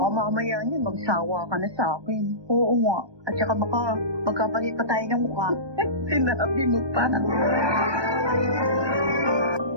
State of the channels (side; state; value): left; late; 1.2 ms